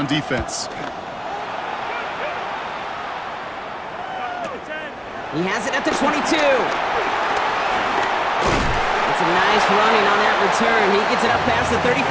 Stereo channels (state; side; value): identical; both; correlation 1.00